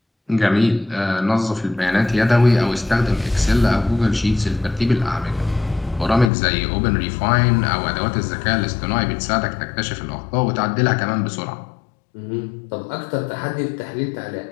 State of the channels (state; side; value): drops out; right; at 6.3 s